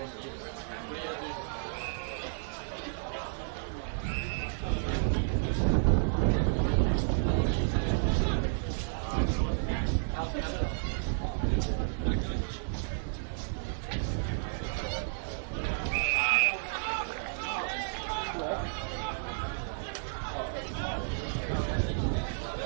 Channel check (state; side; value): silent; left; digital silence